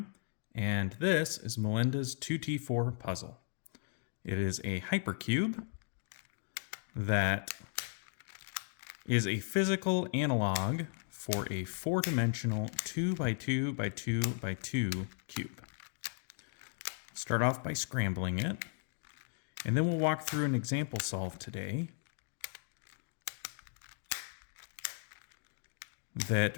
and this is Melinda's 2T4 puzzle. It is a hypercube that is a physical analog for a four-dimensional 2x2x2x2 cube. Start off by scrambling it, and then we'll walk through an example solve today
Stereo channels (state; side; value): silent; right; 54 dB below the other